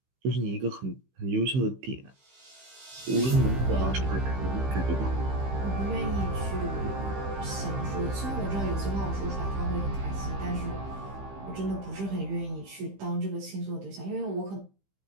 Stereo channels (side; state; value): left; late; 15 ms